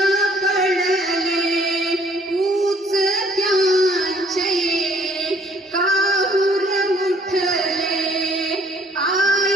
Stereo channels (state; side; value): normal; both; correlation 0.60